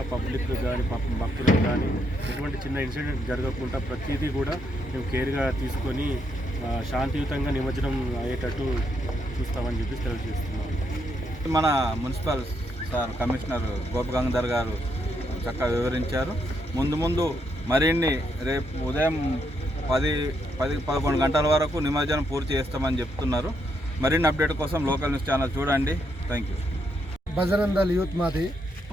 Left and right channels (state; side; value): normal; both; correlation 0.77